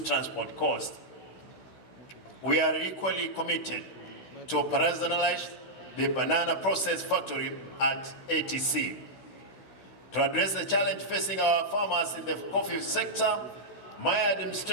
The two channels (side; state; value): right; late; 16 ms